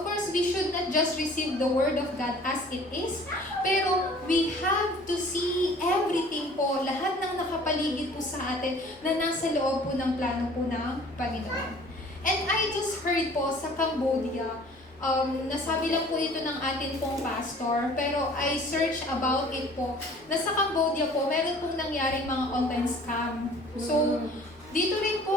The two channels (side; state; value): both; normal; correlation 0.50